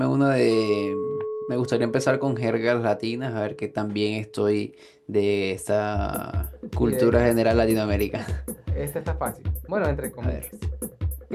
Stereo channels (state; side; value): identical; both; correlation 1.00